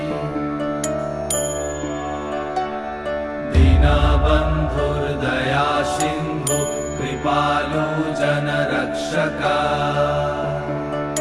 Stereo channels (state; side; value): identical; both; correlation 1.00